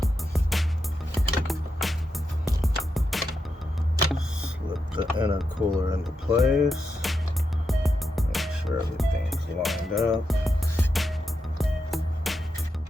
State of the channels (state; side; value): normal; both; correlation 0.86